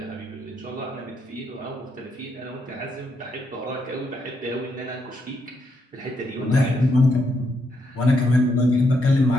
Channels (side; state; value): both; normal; correlation 0.78